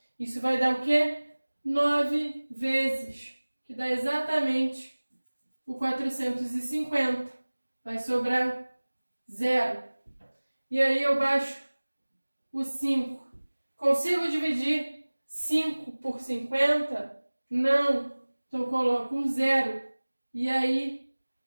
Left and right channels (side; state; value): both; inverted; correlation -1.00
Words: Isso vai dar o quê? 9 vezes, que dá exatamente o 450. Vai sobrar 0. E aí eu baixo o 5. Consigo dividir 5 por 50? Não. Então eu coloco um 0. E aí